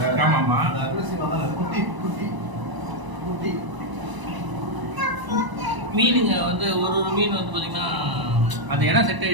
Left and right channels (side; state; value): left; late; 1.0 ms